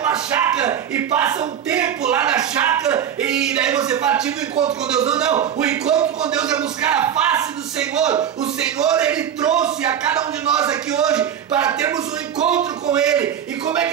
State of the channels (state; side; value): quieter; left; 9.2 dB